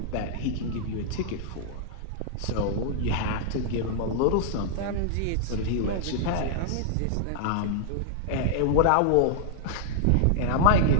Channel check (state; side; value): different; both; correlation -0.01